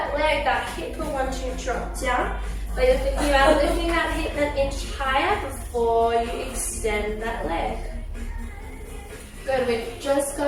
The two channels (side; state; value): both; identical; correlation 1.00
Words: leg, that hip will want to drop down. But you're thinking about lifting that hip an inch higher before you extend that leg. Good, we've just